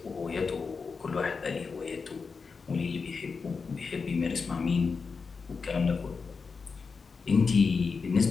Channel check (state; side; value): quieter; right; 5.0 dB